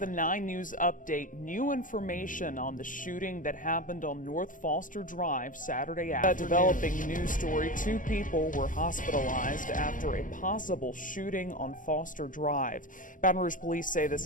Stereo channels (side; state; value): right; late; 0.38 ms